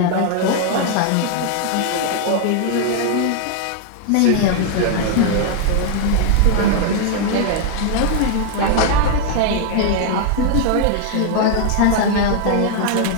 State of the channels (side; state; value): both; different; correlation 0.00